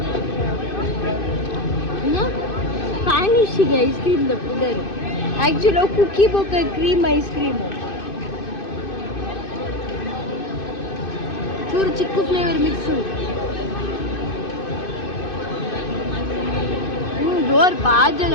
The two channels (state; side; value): late; right; 2.5 ms